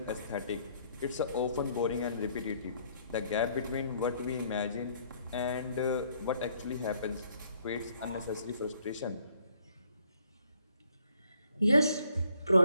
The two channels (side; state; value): both; inverted; correlation -0.65